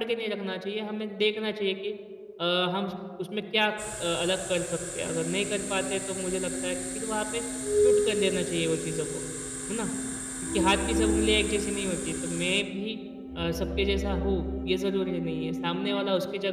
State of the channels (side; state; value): both; identical; correlation 1.00